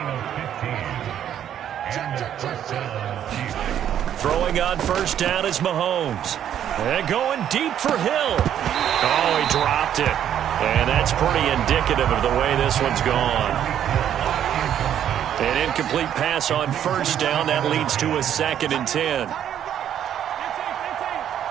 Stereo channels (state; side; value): quieter; left; 10.1 dB